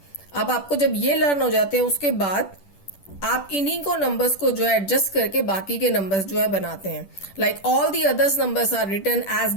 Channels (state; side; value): late; right; 10 ms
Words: अब आपको जब ये लर्न हो जाते हैं उसके बाद आप इन्हीं को नंबर्स को जो है एडजस्ट करके बाकी के नंबर्स जो है बनाते हैं. Like all the others numbers are written as